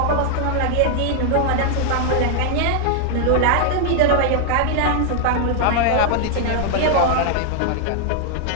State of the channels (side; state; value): both; different; correlation 0.00